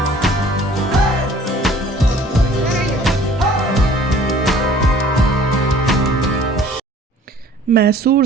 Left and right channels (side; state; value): both; normal; correlation 0.52